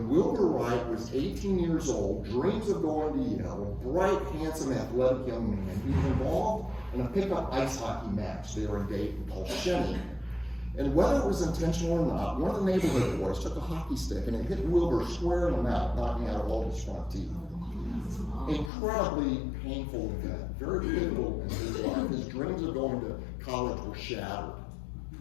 Wilbur Wright was 18 years old, dreams of going to Yale, a bright, handsome, athletic young man, he was involved in a pickup ice hockey match there in Dayton called Shenny. And whether it was intentional or not, one of the neighborhood boys took a hockey stick and it hit Wilbur square in the mouth, knocking out all his front teeth. Incredibly painful event, very pivotal in his life. His dreams of going to college were shattered.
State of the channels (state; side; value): drops out; right; at 18.7 s